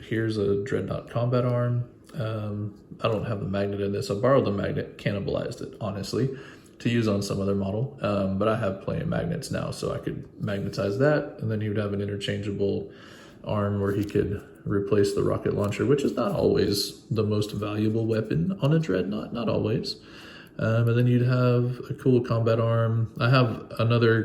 here's a Dreadnought combat arm. I don't have the magnet in this. I borrowed the magnet, cannibalized it, honestly. to use on some other model, but I have plenty of magnets now, so I could magnetize that, and then he would have an interchangeable arm where he could replace the rocket launcher, which is not always the most valuable weapon on a dreadnought, not always. And then you'd have a cool combat arm. I have another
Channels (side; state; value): both; identical; correlation 1.00